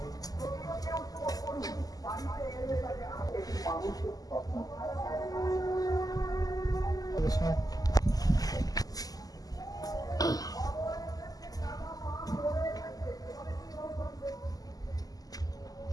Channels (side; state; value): right; late; 0.17 ms